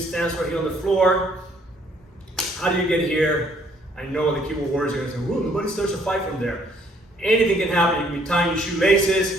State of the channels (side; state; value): both; normal; correlation 0.64